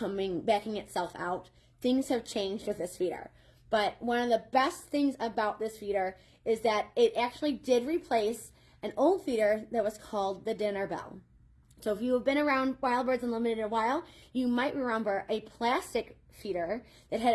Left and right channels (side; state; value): both; identical; correlation 1.00